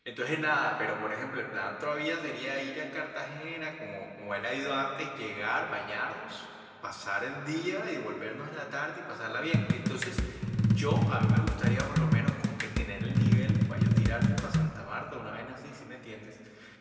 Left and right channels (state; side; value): identical; both; correlation 1.00